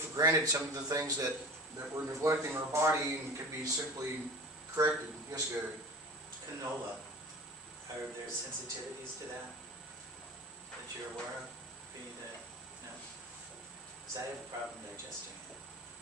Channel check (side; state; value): both; normal; correlation 0.37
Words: granted some of the things that we're neglecting in our body and could be simply corrected. Yes, Gary? Canola, are there sensitivities to that you're aware of? No? Because I have a problem digesting it.